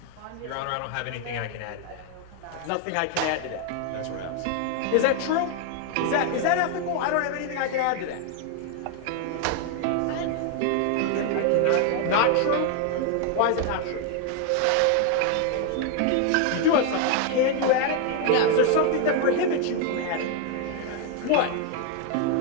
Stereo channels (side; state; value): both; different; correlation 0.00